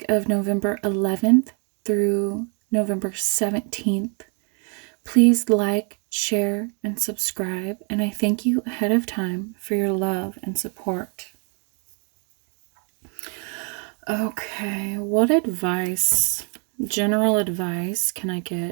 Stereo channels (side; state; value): left; quieter; 38.0 dB